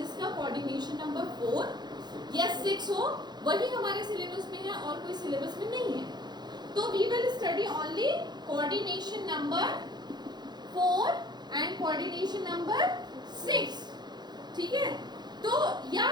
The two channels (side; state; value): left; late; 0.21 ms